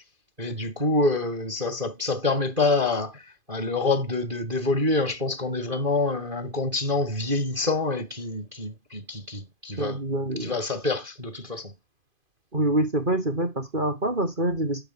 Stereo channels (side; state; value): left; late; 2.5 ms